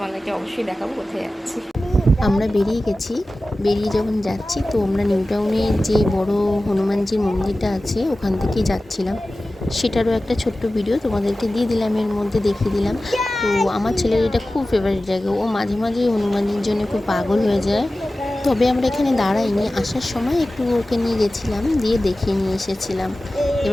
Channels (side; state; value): both; normal; correlation 0.96